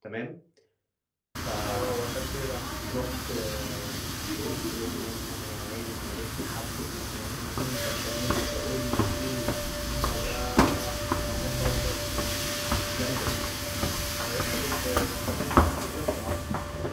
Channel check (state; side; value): identical; both; correlation 1.00